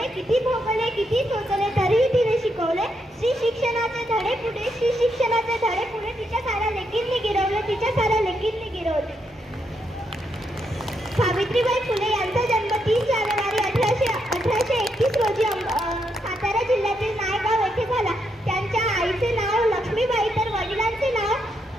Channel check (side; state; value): both; normal; correlation 0.79